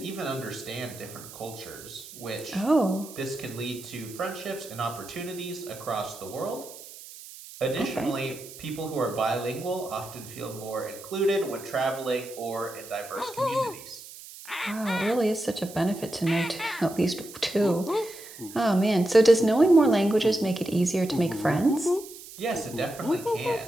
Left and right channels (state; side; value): noise; right; hiss, 16 dB below the sound